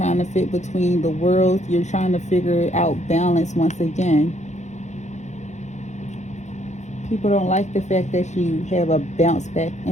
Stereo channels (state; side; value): late; right; 0.34 ms